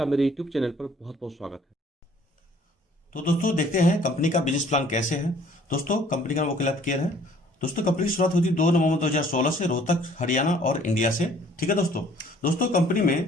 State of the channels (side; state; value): both; normal; correlation 0.57